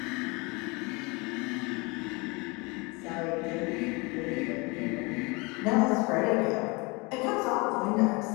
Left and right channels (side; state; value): right; quieter; 27.4 dB